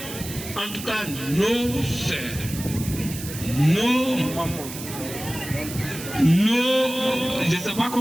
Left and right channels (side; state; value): right; noise; hiss, 11 dB below the sound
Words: en tout cas, nos sœurs, je ne sais pas